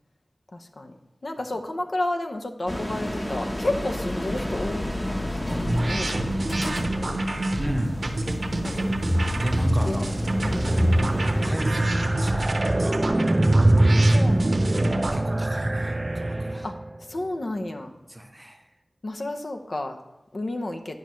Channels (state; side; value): normal; both; correlation 0.98